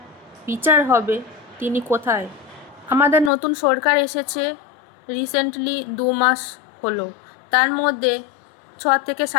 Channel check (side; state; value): right; drops out; at 3.3 s